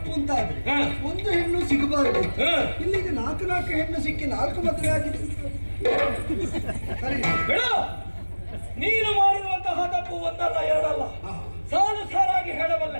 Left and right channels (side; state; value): both; inverted; correlation -1.00